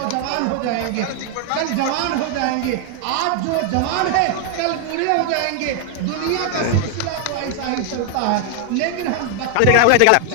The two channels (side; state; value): both; different; correlation 0.00